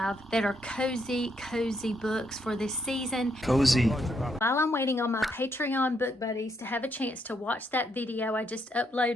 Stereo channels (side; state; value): both; normal; correlation 0.76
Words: that are cozy books for this season. Cozy. While I'm waiting on my Patreon book buddies to have a chance to watch that video I just